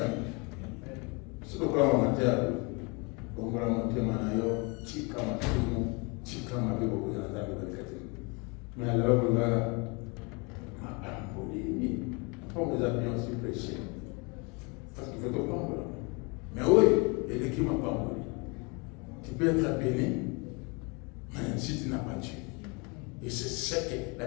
C'est pourquoi amateur, on va monter manayo, tika matumu, tika mabebo kwa nzambe kwa kati. Mais alors vous va on vous a bien aussi prêché. Parce qu'il faut te prendre. Mais oui, il y a qui m'a pas mourir. Tu peux être béni, mais si tu n'as pas Dieu. Et c'est ce que la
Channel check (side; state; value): right; quieter; 30.5 dB